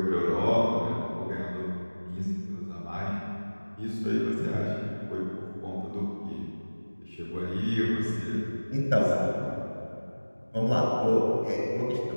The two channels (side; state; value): both; inverted; correlation -1.00